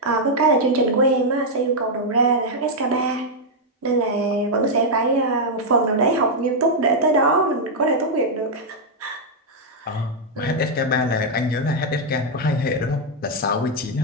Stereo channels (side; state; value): both; normal; correlation -0.02